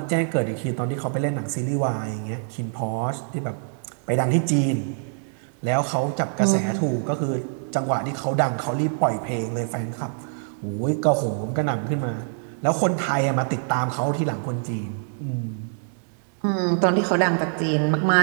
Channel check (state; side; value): silent; left; digital silence